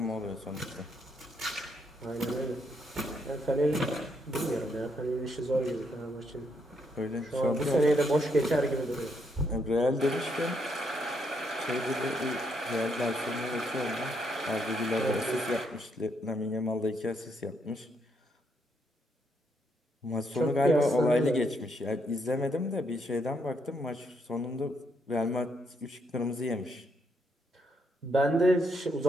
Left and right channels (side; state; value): both; normal; correlation 0.75